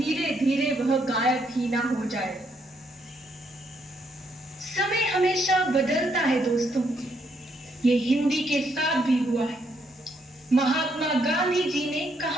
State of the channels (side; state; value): both; normal; correlation 0.74